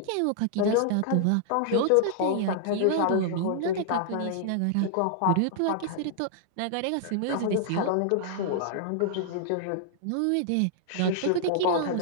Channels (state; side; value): different; both; correlation -0.01